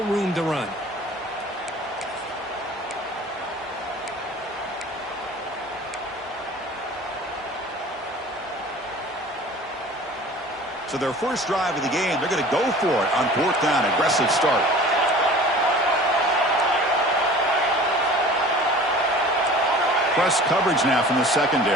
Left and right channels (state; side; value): normal; both; correlation 0.43